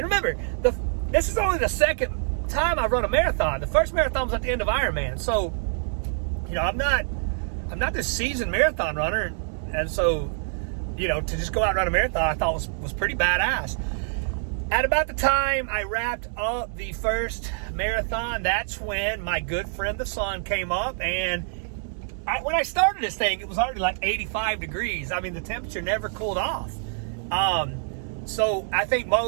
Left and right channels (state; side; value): silent; left; digital silence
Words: this is only the second time I've run a marathon. The first marathon was at the end of Ironman. So, I'm not this seasoned marathon runner. And so, to just go out and run a marathon, I thought was pretty badass. At about the time I wrapped up the first marathon, that's when my good friend the sun came up. And when I started this thing, it was already like 85 degrees. The temperature never cooled off. So I think